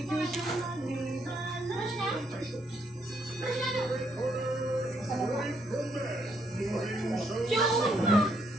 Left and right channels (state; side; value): normal; both; correlation 0.73